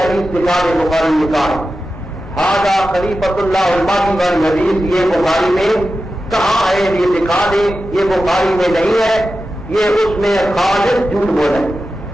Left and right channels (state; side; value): normal; both; correlation 0.92